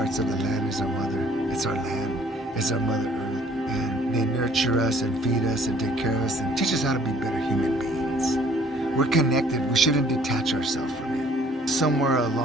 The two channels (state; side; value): normal; both; correlation 0.57